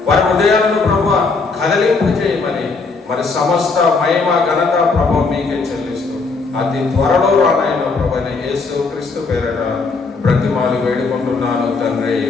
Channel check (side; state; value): right; quieter; 4.2 dB